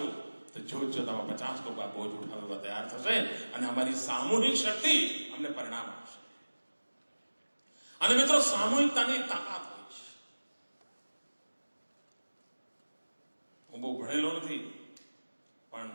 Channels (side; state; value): both; inverted; correlation -1.00